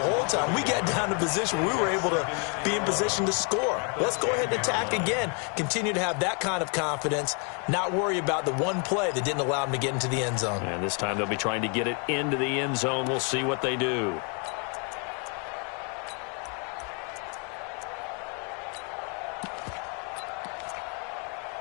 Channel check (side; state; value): right; quieter; 37.4 dB